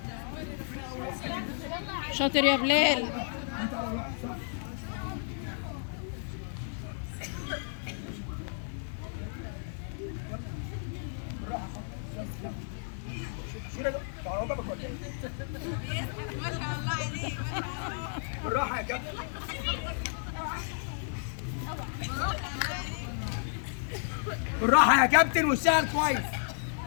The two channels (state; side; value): silent; right; digital silence